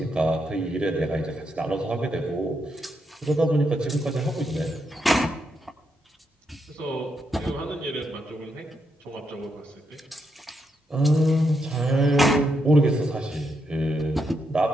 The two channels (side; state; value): both; normal; correlation 0.81